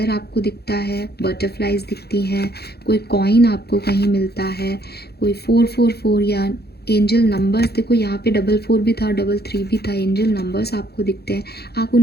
आपको दिखता है, बटरफ्लाइज दिखती हैं, कोई कॉइन आपको कहीं मिलता है, कोई 444 या एंजल नंबर्स, देखो यहाँ पे 44 भी था, 33 भी था, एंजल नंबर्स आपको दिखते हैं। आप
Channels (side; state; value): right; late; 0.47 ms